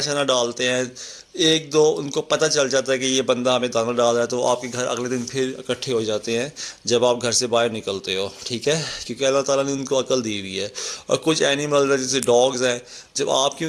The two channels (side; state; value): both; identical; correlation 1.00